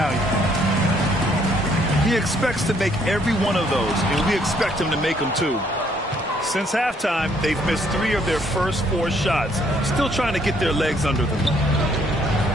He expects to make every one of those, and we expect him to make them too. Since halftime, they've missed 3 of their first 4 shots. Still trying to get their legs under them.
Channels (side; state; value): both; normal; correlation 0.67